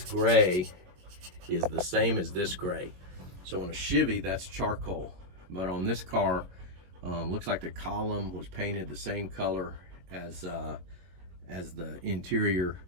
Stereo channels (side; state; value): left; late; 22 ms